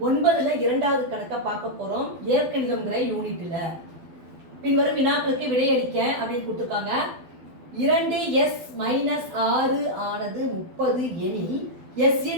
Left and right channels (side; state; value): left; late; 12 ms